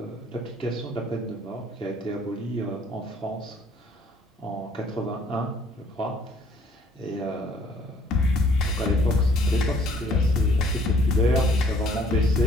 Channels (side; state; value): both; normal; correlation 0.59